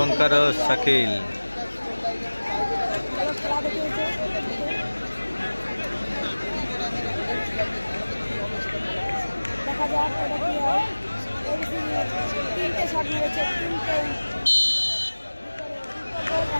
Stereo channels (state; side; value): inverted; both; correlation -1.00